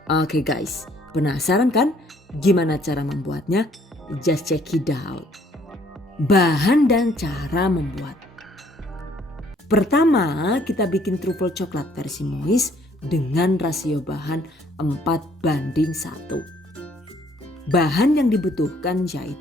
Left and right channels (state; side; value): normal; both; correlation 0.63